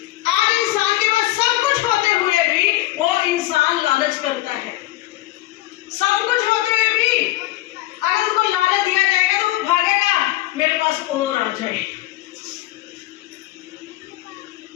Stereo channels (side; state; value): right; quieter; 17.0 dB